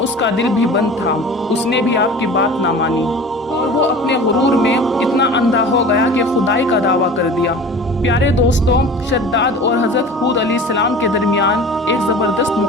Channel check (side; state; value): both; normal; correlation 0.39